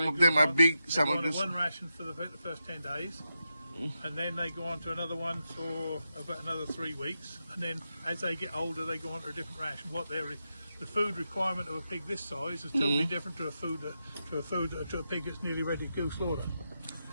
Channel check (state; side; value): inverted; both; correlation -0.87